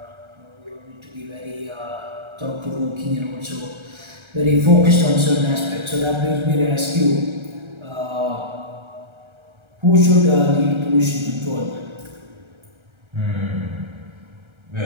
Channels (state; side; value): late; left; 1.3 ms